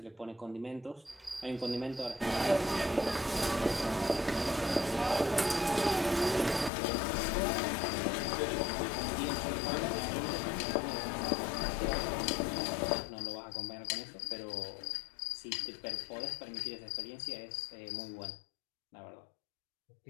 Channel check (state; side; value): drops out; right; at 6.7 s